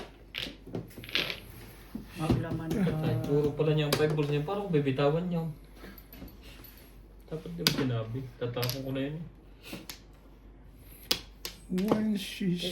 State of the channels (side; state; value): both; identical; correlation 1.00